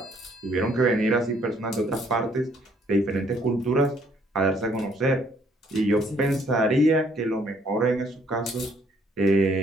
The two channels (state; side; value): normal; both; correlation 0.65